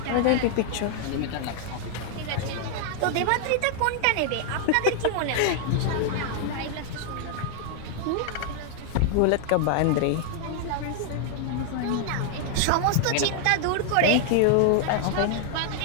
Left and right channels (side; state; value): both; different; correlation 0.00